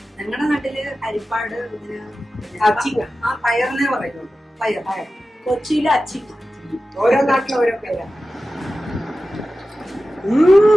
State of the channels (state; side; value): normal; both; correlation 0.94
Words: ഞങ്ങളുടെ നാട്ടില്. അരിപ്പാട് അച്ചിങ്ങ. ആ പയറിനെ പറയുള്ളൂ. പയർ. കൊച്ചിയിലെ അച്ചിങ്ങ. ഓരോ നാട്ടിലും ഓരോ പേരാണ്.